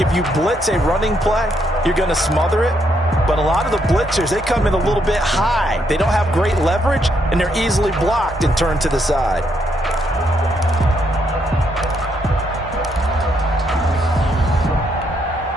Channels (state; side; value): normal; both; correlation 0.75